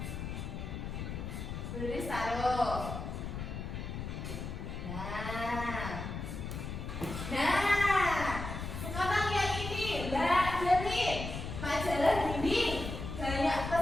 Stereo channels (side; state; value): left; noise; rumble, 6 dB below the sound